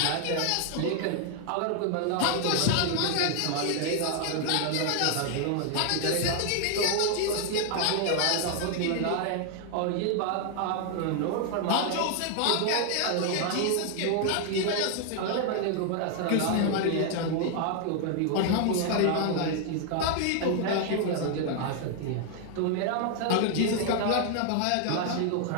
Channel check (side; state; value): both; different; correlation 0.00